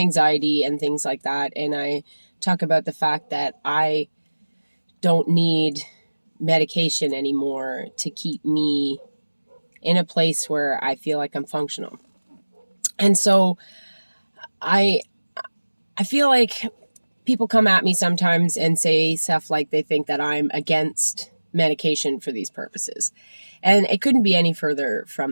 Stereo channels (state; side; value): inverted; both; correlation -1.00